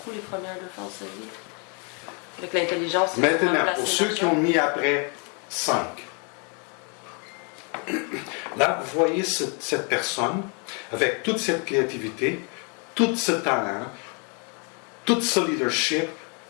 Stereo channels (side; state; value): right; quieter; 36.2 dB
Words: les premières deux fois de sa vie. Avec l'intelligence, il a sûrement Maintenant, placé pour ceux qui l'argent. ont mis après 5, là, vous voyez cette personne avec toute cette créativité, tout ce talent, tout ce leadership,